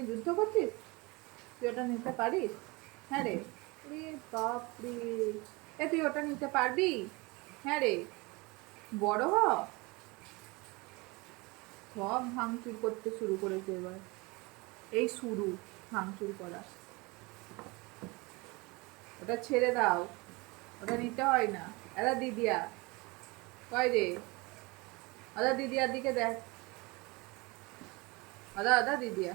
যুদ্ধ করছিস? তুই ওটা নিতে পারিস? হ্যাঁ রে। রে বাপরে, এ তুই ওটা নিতে পারবি? হ্যাঁ রে, বড় হ। সব ভাঙচুর করতে শুরু করেছে এবার। এই শুরু ভাঙচুর করা। ওটা ছেড়ে দাও, ওটা নিতে হয় না। এরা দিদিয়া কয় রে? আদা দিদিয়ার দিকে দেখ। আদা আদা দিদিয়া,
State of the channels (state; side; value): quieter; left; 25.6 dB